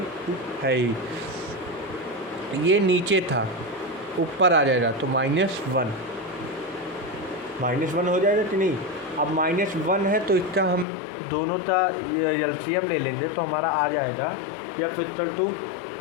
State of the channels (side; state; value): right; drops out; at 10.9 s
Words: है ही, ये नीचे था ऊपर आ जाएगा तो -1 हो जाएगा कि नहीं। अब -1 है तो इसका हम दोनों का एलसीएम ले लेंगे तो हमारा आ जाएगा या फिर 2